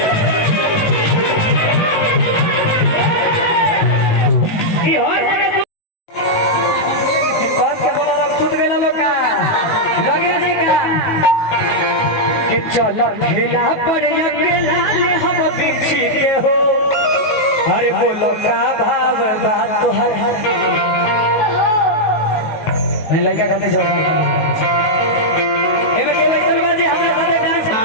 चलो खेला पर अकेला ले हम बिछी के हो अरे बोलो का भाव बात तो है नहीं लड़का खाते छोड़ एमे के भाई सलमान जी हमरा साथे डांस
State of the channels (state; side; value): late; right; 18 ms